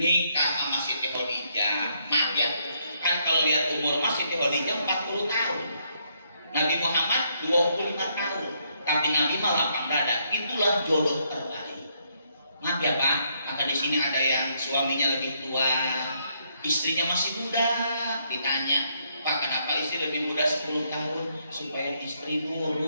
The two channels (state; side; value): inverted; both; correlation -0.74